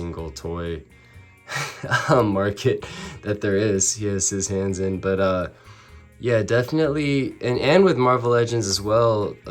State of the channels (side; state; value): both; identical; correlation 1.00